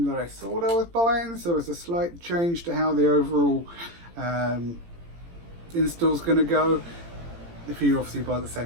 that I thought I was buying, so it's a slight change to how the overall install's going to go. If you obviously buy the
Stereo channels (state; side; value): late; left; 18 ms